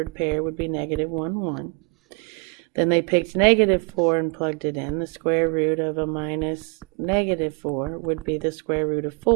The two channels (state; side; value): quieter; left; 30.9 dB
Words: pair would be -1, 1. Then they picked -4 and plugged it in. The square root of a minus -4 would be the square root of